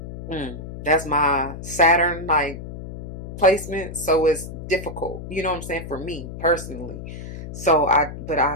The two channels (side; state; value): left; noise; hum, 10 dB below the sound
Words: that's my Saturn like placement, so it's difficult. You know what I'm saying, for me personally. So but